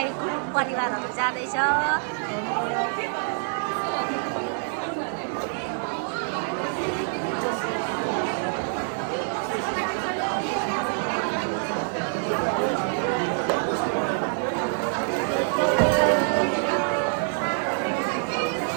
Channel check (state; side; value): silent; left; 59 dB below the other